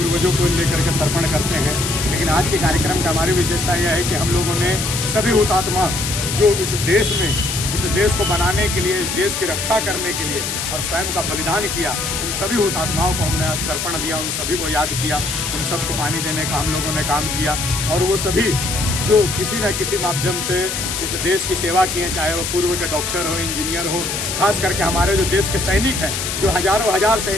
को लेकर के तर्पण करते हैं, लेकिन आज के कार्यक्रम का हमारी विशेषता यह है कि हम लोगों ने सभी हुतात्मा जो इस देश को बनाने के लिए, इस देश की रक्षा करने के लिए और स्वयं का बलिदान किया, उन सभी हुतात्माओं को हमने आज तर्पण दिया, उन सभी को याद किया, उन सबको पानी देने का हम लोगों ने काम किया। और वो सभी जो किसी न किसी माध्यम से इस देश की सेवा किए, चाहे वो पूर्व के डॉक्टर हो, इंजीनियर हो, खास करके हमारे जो देश के सैनिक हैं, जो हजारों हजार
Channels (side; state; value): left; noise; hiss, 3 dB below the sound